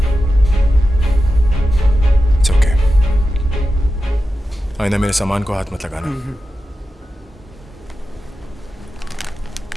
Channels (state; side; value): normal; both; correlation 0.91